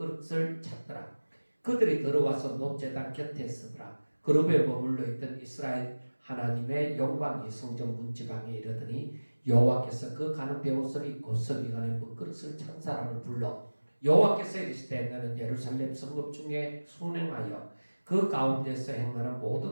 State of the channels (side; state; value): both; inverted; correlation -1.00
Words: 찼더라. 그들이 들어와서 놋제단 곁에 서더라. 그룹에 머물러 있던 이스라엘 하나님의 영광이 성전 문지방에 이르더니 여호와께서 그 가는 베옷을 입고 서기관의 먹그릇을 찬 사람을 불러 여호와께서 이르시되 너는 예루살렘 성읍 중에 순행하여 그 가운데서 행하는